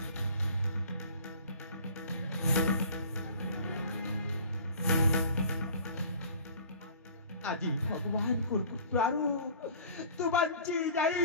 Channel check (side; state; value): both; inverted; correlation -0.46